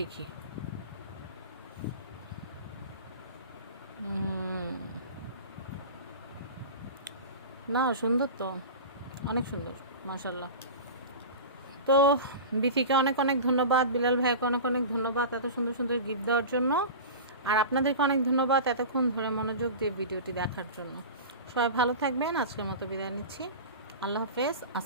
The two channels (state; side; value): inverted; both; correlation -0.31